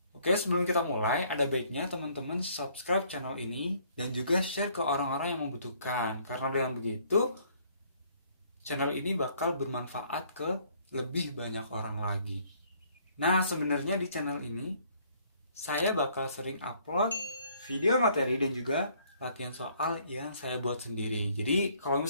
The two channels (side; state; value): both; inverted; correlation -0.63